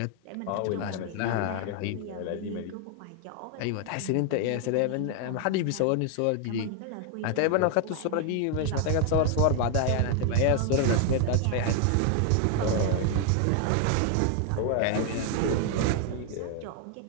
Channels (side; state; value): both; different; correlation 0.00